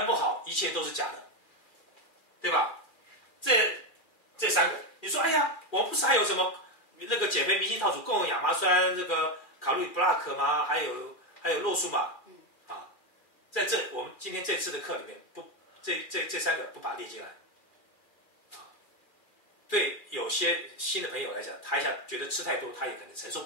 不好一切都是假的，对吧？这3个你说哎呀，我不是还有什么那个减肥明星套组共有亚麻酸这个卡路里 block 吗？还有洛素嘛在我们今天这次的课里面不这3个不把它列进来对有些新的朋友来讲，他一下觉得吃太多他也可能承受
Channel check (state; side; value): late; right; 2.4 ms